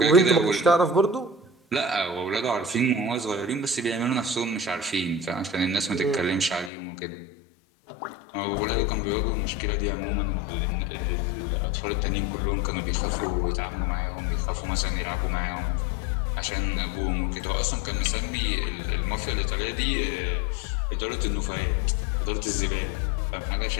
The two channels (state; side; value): drops out; right; at 6.7 s